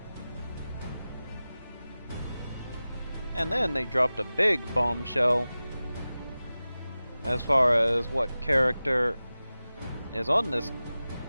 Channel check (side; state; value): both; inverted; correlation -0.96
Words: And then they dropped a big bombshell as far as what character is on this